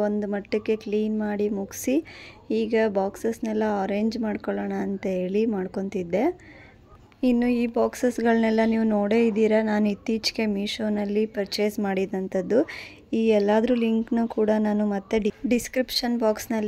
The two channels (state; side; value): identical; both; correlation 1.00